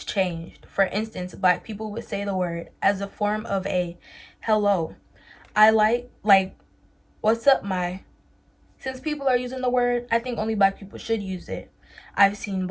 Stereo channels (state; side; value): identical; both; correlation 1.00